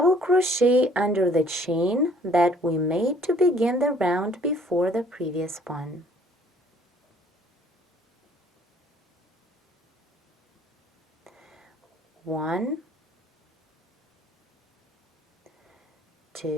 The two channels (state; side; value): normal; both; correlation 0.57